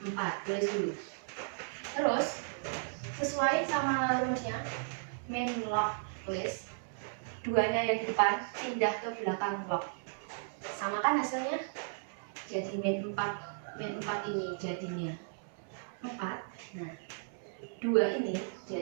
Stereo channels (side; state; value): left; silent; 54 dB below the other